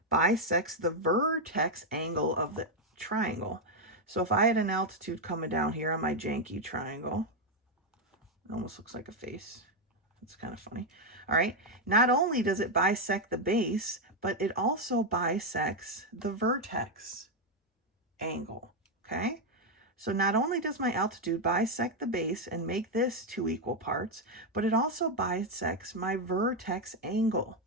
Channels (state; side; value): normal; both; correlation 0.03